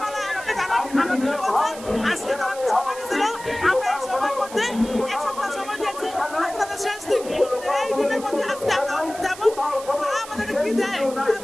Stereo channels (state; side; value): noise; right; hiss, 15 dB below the sound